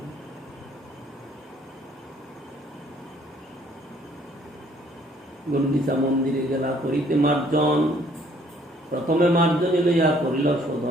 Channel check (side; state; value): both; normal; correlation 0.62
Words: গুন্ডিচা মন্দিরে গেলা করিতে মার্জন, প্রথমে মার্জনী লইয়া করিল